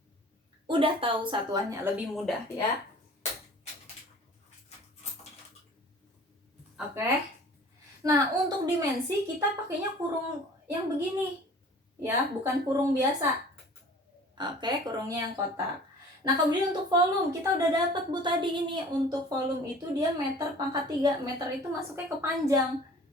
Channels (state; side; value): normal; both; correlation 0.46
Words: udah tahu satuannya lebih mudah ya. Oke. Nah, untuk dimensi kita pakainya kurung yang begini. Ya, bukan kurung biasa. Oke, kurungnya yang kotak. Nah, kemudian untuk volume, kita udah dapat Bu tadi ini. Untuk volume itu dia meter pangkat 3. Meter itu masuknya ke panjang.